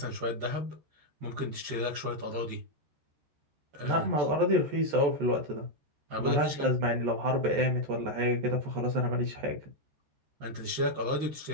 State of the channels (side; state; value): left; late; 14 ms